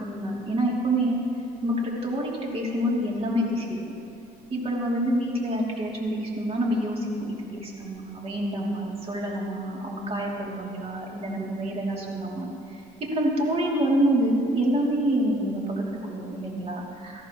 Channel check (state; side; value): noise; right; rumble, 29 dB below the sound